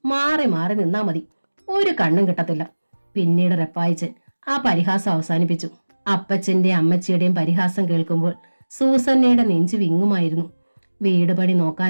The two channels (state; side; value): inverted; both; correlation -1.00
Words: മാറി മാറി നിന്നാ മതി, ഒരു കണ്ണും കിട്ടത്തില്ല. പിന്നീട് റപ്പായിച്ചൻ ആ പരിഹാസം അവസാനിപ്പിച്ചു. അപ്പച്ചന്റെ അമ്മച്ചിയുടെയും പരിഹാസം കേൾക്കുമ്പോൾ സൂസന്നയുടെ നെഞ്ചു വിങ്ങുമായിരുന്നു. വീട് പണി